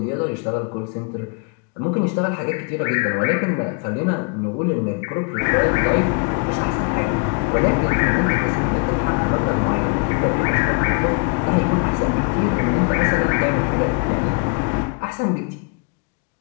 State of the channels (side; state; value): right; quieter; 33.2 dB